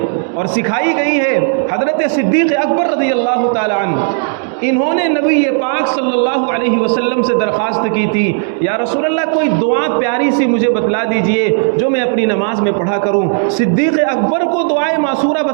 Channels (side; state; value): left; silent; 65 dB below the other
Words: اور سکھائی گئی ہے، حضرت صدیق اکبر رضی اللہ تعالی عنہ، انہوں نے نبی پاک صلی اللہ علیہ وسلم سے درخواست کی تھی، یا رسول اللہ کوئی دعا پیاری سی مجھے بتلا دیجئے جو میں اپنی نماز میں پڑھا کروں۔ صدیق اکبر کو دعائے معصورہ